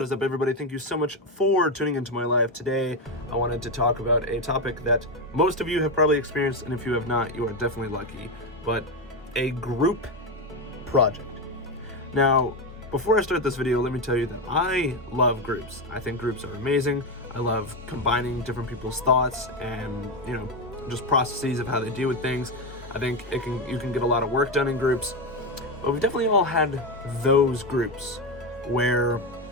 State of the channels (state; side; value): normal; both; correlation 0.11